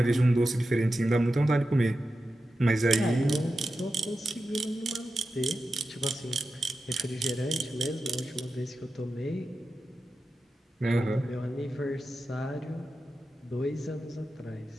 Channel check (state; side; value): normal; both; correlation 0.91